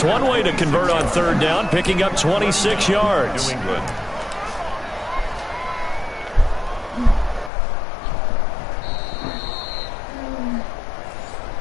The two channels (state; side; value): drops out; right; at 7.5 s